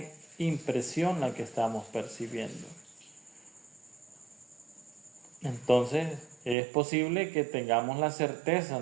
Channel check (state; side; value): drops out; left; at 6.6 s